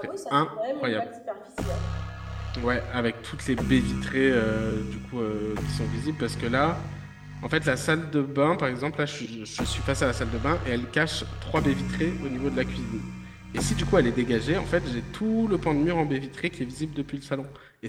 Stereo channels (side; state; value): both; identical; correlation 1.00